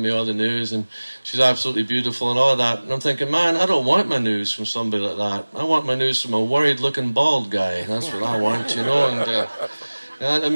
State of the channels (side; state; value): both; inverted; correlation -1.00